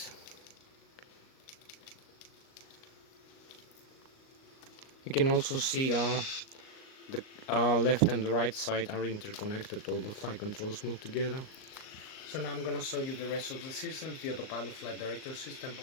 You can also see the left and the right side are interconnected. All the flight controls move together. So now I'm gonna show you the rest of the systems: the autopilot flight director system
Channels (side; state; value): right; late; 38 ms